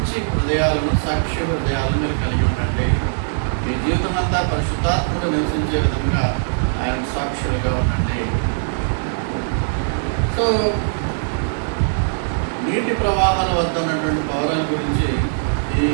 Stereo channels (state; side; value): silent; left; digital silence